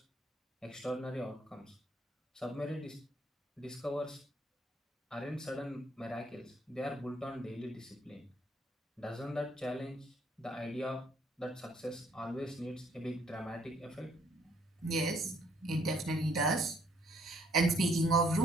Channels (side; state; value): both; normal; correlation 0.66